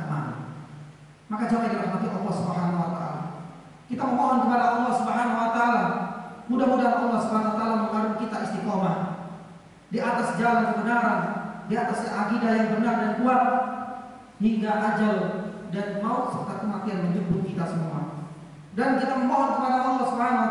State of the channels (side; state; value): both; identical; correlation 1.00